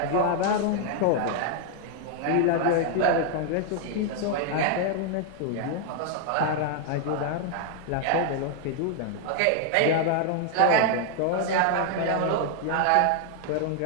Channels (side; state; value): both; different; correlation 0.00